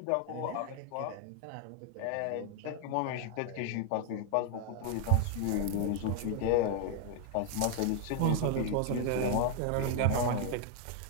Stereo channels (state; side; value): different; both; correlation 0.00